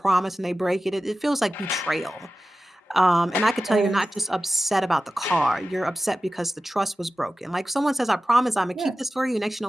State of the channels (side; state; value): both; normal; correlation 0.94